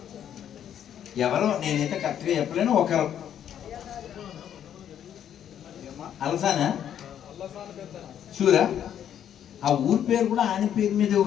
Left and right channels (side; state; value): right; quieter; 9.8 dB